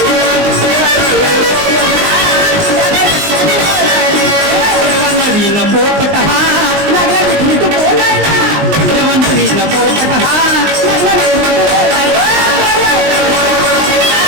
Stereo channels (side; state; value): left; late; 19 ms